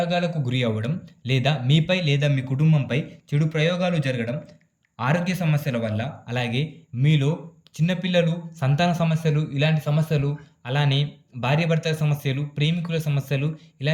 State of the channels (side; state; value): both; identical; correlation 1.00